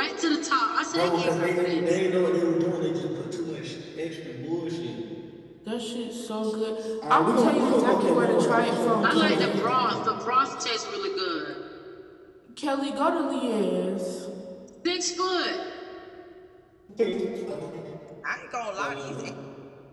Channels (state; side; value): identical; both; correlation 1.00